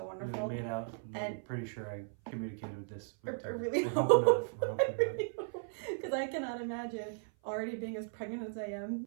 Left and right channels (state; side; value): silent; left; 54 dB below the other